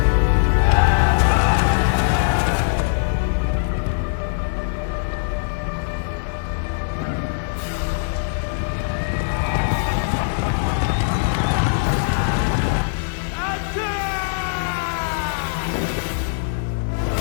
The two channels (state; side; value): silent; right; 56 dB below the other